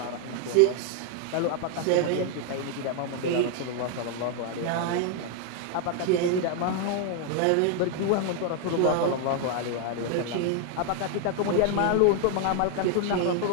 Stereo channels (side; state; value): both; different; correlation 0.00